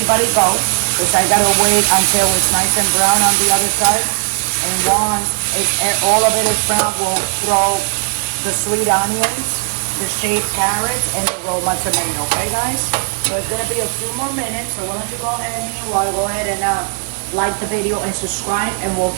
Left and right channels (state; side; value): silent; left; 67 dB below the other